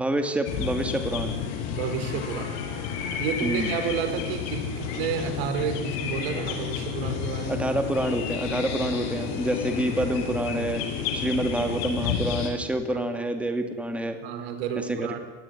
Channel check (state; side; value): normal; both; correlation 0.44